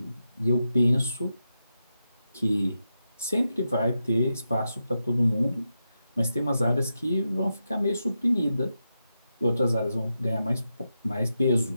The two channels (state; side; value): inverted; both; correlation -0.88